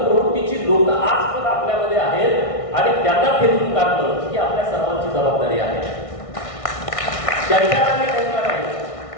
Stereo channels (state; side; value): late; right; 1.6 ms